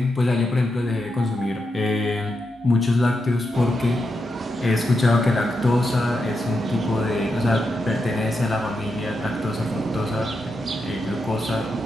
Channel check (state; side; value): normal; both; correlation 0.85